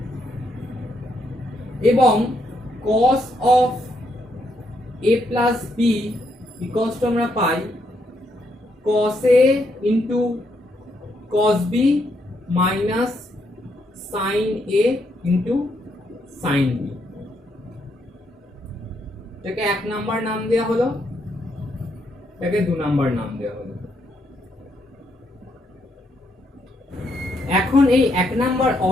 এবং cos of a plus b equals to আমরা পাই cos a into cos b minus sin a into sin b। এটাকে 1 number নাম দেওয়া হলো, এটাকে 2 number নাম দেওয়া হলো। এখন এই 1 নাম্বার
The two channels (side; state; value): both; normal; correlation 0.76